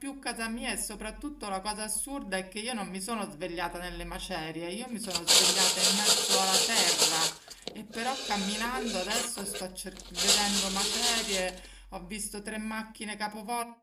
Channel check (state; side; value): identical; both; correlation 1.00